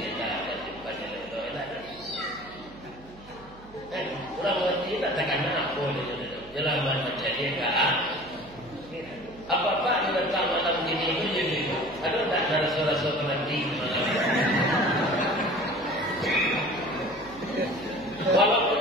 tak ada tempatnya itu enak. Orang mengerti tak takkan apa dia jelas macam dia kan. Apa-apa dia datang malam ini itu jadi ada tak ada rasa-rasa penanti malam. Walaupun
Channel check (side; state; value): right; noise; hum, 21 dB below the sound